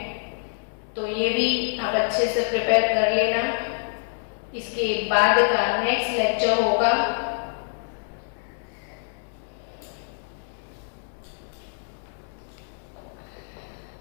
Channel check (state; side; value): silent; right; digital silence